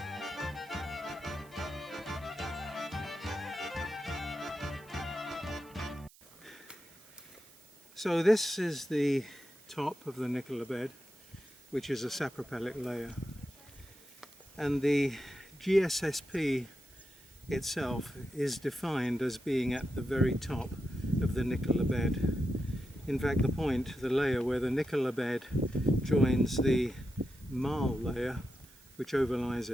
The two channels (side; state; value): right; noise; hiss, 25 dB below the sound